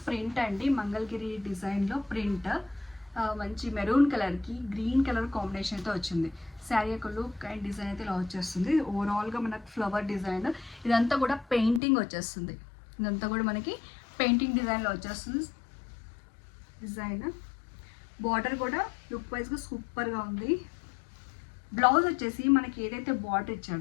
ప్రింట్ అండి. మంగళగిరి డిజైన్లో ప్రింట్ మంచి మెరూన్ కలర్కి గ్రీన్ కలర్ కాంబినేషన్ అయితే వచ్చింది. శారీ యొక్క లుక్ అండ్ డిజైన్ అయితే ఇలా వచ్చేస్తుంది. ఓవరాల్గా మనకు ఫ్లవర్ డిజైన్, ఇదంతా కూడా పెయింటింగ్ వచ్చేస్తుంది. ఇదంతా కూడా మనకి పెయింటింగ్ డిజైన్లో వచ్చేస్తుంది. డిజైన్ బార్డర్ కూడా లుక్ వైజ్గా సూపర్గా ఉంది. బ్లౌజ్ వచ్చేసి మనకి ఏదైతే బార్డర్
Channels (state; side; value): drops out; right; at 11.8 s